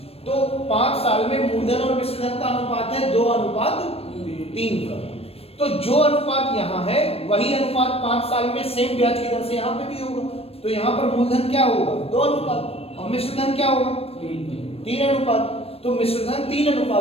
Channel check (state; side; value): late; right; 0.28 ms